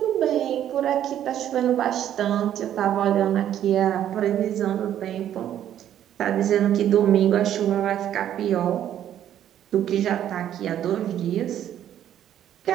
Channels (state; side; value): quieter; left; 10.9 dB